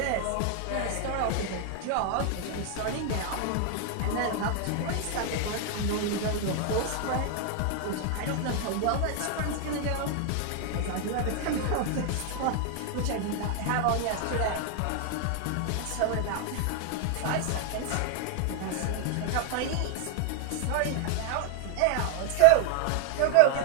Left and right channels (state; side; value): different; both; correlation 0.00